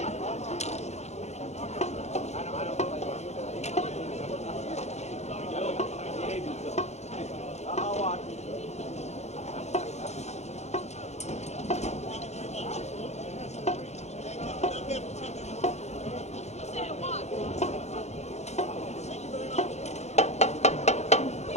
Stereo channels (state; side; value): late; right; 0.32 ms